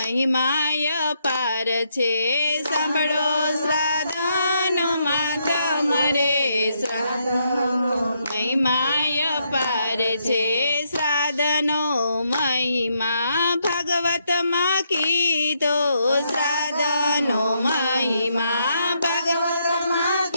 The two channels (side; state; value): both; inverted; correlation -0.77